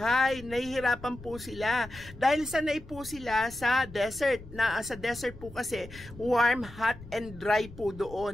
Nahihirapan po sila dahil sanay po sila sa desert. Sa desert po kasi warm, hot, and dry po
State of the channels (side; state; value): left; noise; rumble, 17 dB below the sound